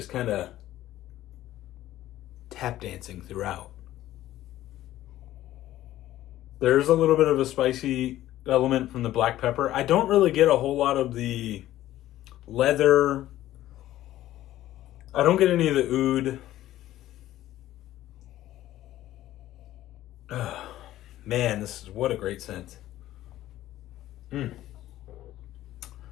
kind of tap dancing throughout. There's a little bit of a spicy element from the black pepper. I don't really get a whole lot of the leather. I don't get any of the oud. Oh, man, this is what a great scent.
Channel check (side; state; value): right; quieter; 14.1 dB